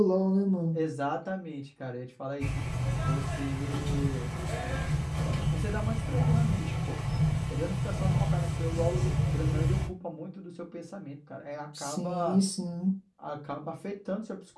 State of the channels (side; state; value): both; identical; correlation 1.00